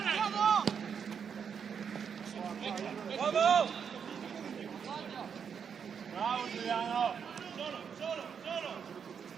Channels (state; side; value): quieter; left; 7.0 dB